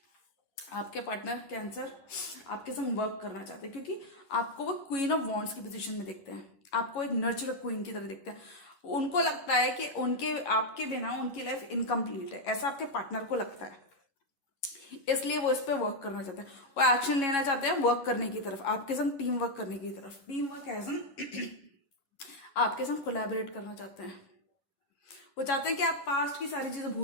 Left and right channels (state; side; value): late; right; 11 ms